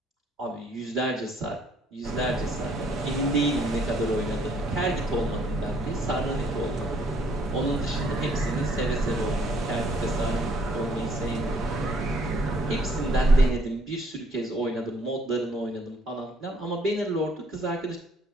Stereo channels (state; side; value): normal; both; correlation 0.64